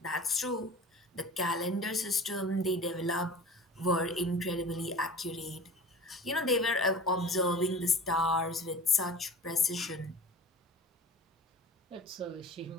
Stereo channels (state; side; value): normal; both; correlation 0.39